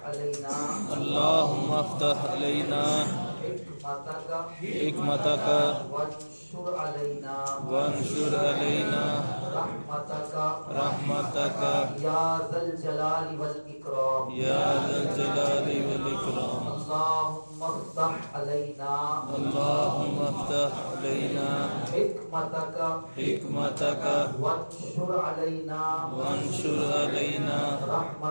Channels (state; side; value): inverted; both; correlation -1.00